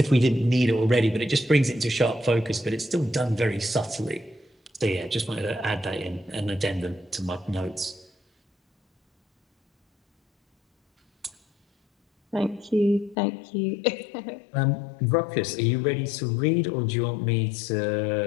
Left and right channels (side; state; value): right; drops out; at 13.2 s